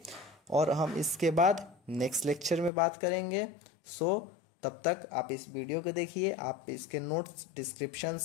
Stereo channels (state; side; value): drops out; right; at 2.7 s